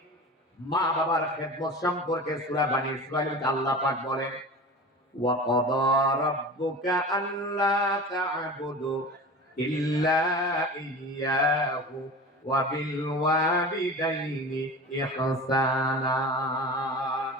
মা বাবার খেদমত সম্পর্কে সূরা বানী ইসরাঈল আল্লাহ পাক বলেন, ওয়া ক্বাদা রাব্বুকা আল্লা তা'বুদু ইল্লা ইয়্যাহু ওয়া বিল ওয়ালিদাইনি ইহসানা।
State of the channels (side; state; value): both; normal; correlation 0.34